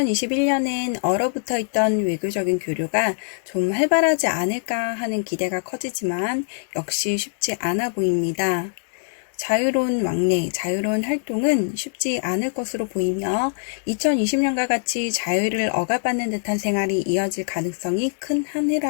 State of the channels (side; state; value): right; silent; digital silence